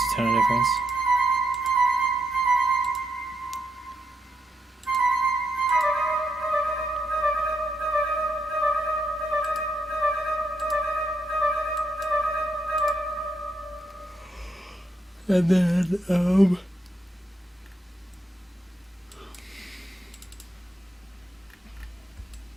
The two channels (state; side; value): normal; both; correlation 0.80